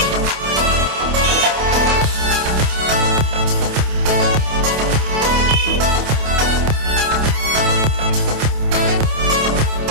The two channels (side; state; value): left; late; 28 ms